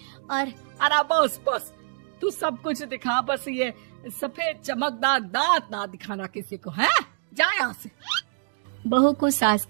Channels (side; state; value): left; silent; digital silence